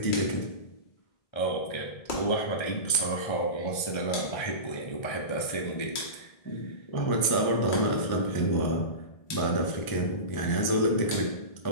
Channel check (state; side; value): late; right; 1.7 ms